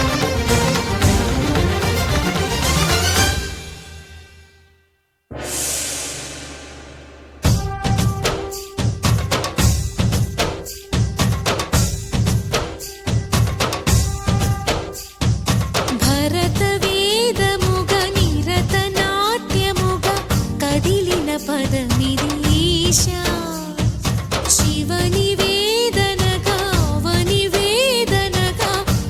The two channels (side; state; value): both; identical; correlation 1.00